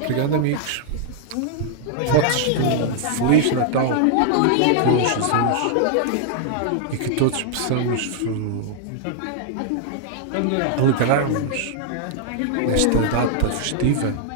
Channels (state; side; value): different; both; correlation -0.01